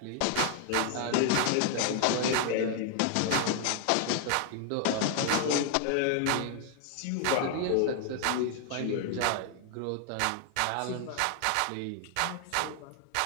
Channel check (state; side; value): different; both; correlation 0.00